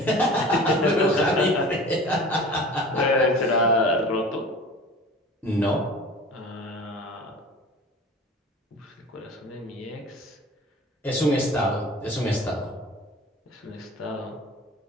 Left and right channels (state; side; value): normal; both; correlation 0.40